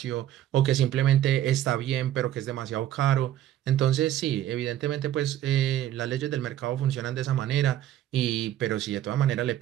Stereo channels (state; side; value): quieter; left; 12.3 dB